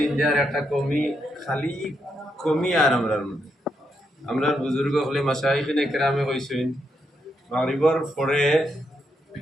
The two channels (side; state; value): both; normal; correlation 0.80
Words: যার একটা খালি কমি আর আমরার বুজুর্গ হলে মাশাইখিনে কেরামে কইছেন মাগরিবের পরে